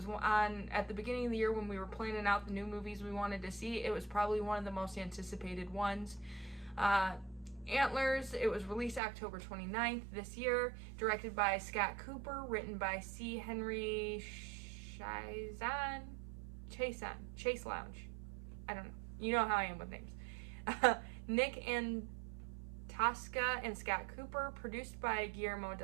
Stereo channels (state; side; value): drops out; left; at 9.0 s